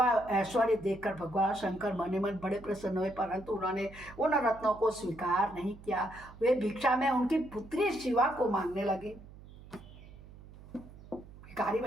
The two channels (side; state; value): right; noise; hum, 19 dB below the sound